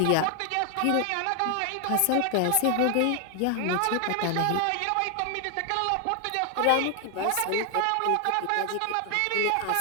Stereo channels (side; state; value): both; different; correlation 0.00